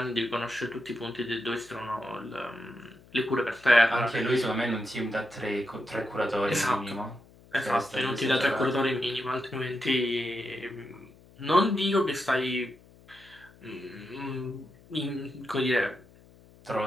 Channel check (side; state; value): left; noise; hum, 25 dB below the sound